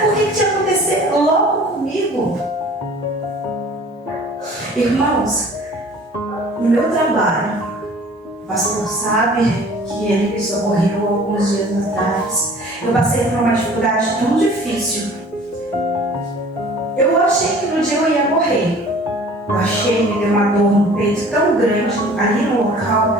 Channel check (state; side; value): normal; both; correlation 0.48